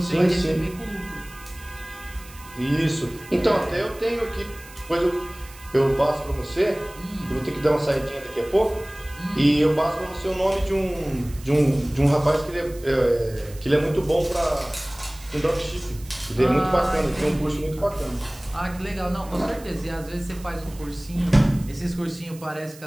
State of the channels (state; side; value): noise; right; hiss, 20 dB below the sound